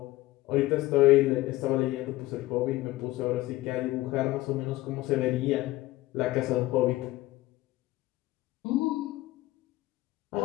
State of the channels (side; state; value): right; quieter; 17.9 dB